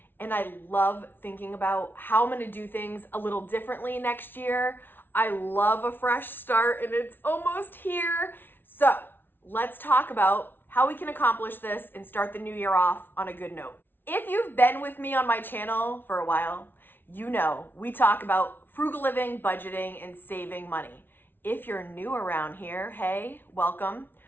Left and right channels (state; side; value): late; right; 0.10 ms